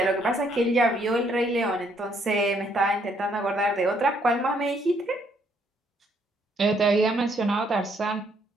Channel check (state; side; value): normal; both; correlation 0.69